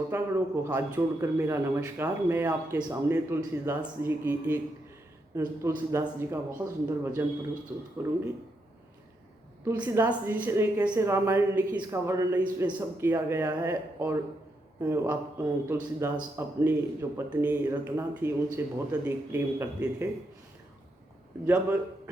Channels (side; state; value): both; normal; correlation 0.81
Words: को हाथ जोड़कर मेरा नमस्कार। मैं आपके सामने तुलसीदास जी का बहुत सुंदर भजन प्रस्तुत करूंगी। तुलसीदास जी ने कैसे रामायण लिखी इसका वर्णन इसमें सब किया गया है। और आप तुलसीदास अपनी जो पत्नी रत्ना थी उनसे बहुत अधिक प्रेम करते थे। जब